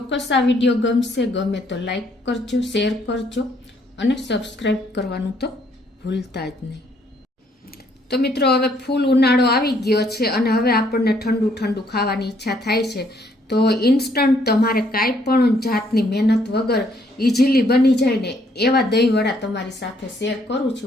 આ વિડીયો ગમશે। ગમે તો લાઈક કરજો, શેર કરજો અને સબસ્ક્રાઈબ કરવાનું તો ભૂલતા જ નહીં। તો મિત્રો હવે ફૂલ ઉનાળો આવી ગયો છે અને હવે આપણને ઠંડુ ઠંડુ ખાવાની ઈચ્છા થાય છે। તો ઇન્સ્ટન્ટ તમારે કાંઈ પણ જાતની મહેનત વગર ઇઝીલી બની જાય ને એવા દહીંવડા તમારી સાથે શેર કરું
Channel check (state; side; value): normal; both; correlation 0.68